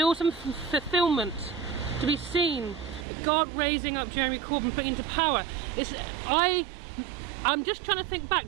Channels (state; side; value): drops out; left; at 3.1 s